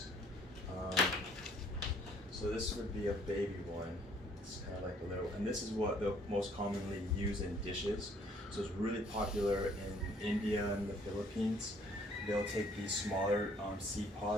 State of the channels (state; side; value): normal; both; correlation 0.61